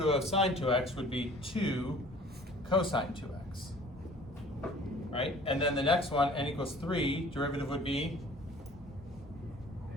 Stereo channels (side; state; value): both; normal; correlation 0.49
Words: of sine 2x would be 2 cosine 2x, right? And then the next one, n equals 3, derivative would be